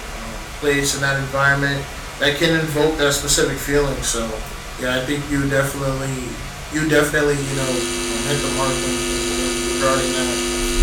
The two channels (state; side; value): identical; both; correlation 1.00